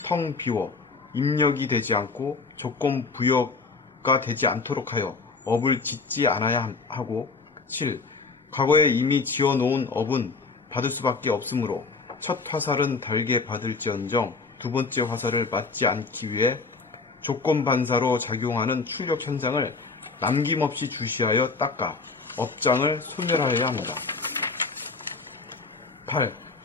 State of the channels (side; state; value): right; quieter; 4.3 dB